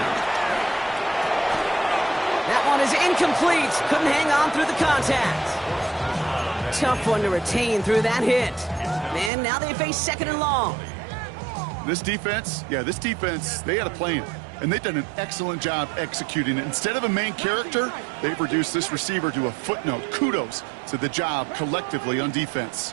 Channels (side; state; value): left; drops out; at 9.3 s